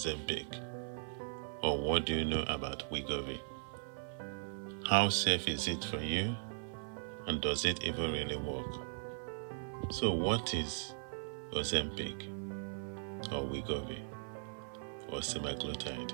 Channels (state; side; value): silent; left; 52 dB below the other